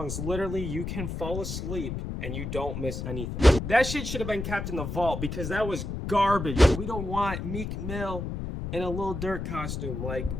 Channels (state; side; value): noise; left; rumble, 5 dB below the sound